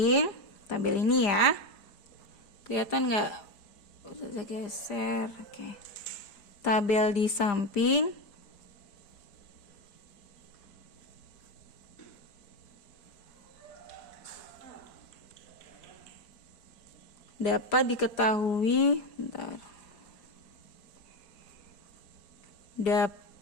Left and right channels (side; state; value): right; late; 5.0 ms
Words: tabel ini ya. Kelihatan nggak? Udah geser. Oke. Tabel di samping dapat diketahui